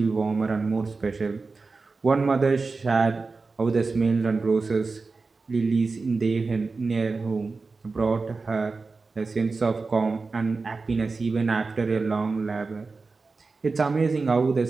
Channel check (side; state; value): left; quieter; 4.1 dB